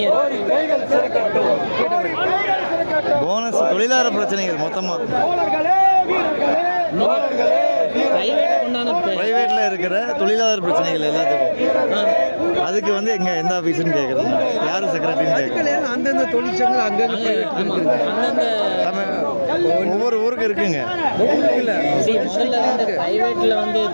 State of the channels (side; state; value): both; inverted; correlation -1.00